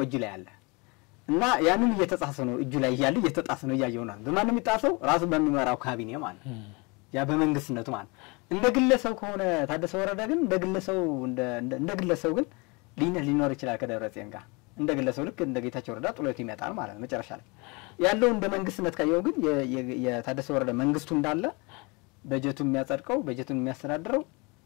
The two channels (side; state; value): right; quieter; 28.3 dB